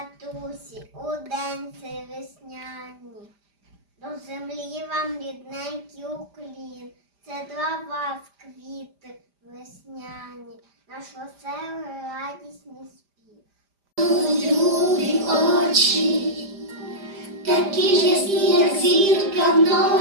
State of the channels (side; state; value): left; late; 5.0 ms